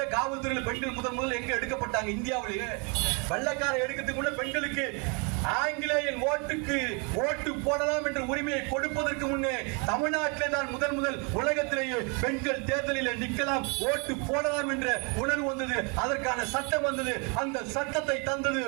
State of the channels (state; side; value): quieter; left; 33.9 dB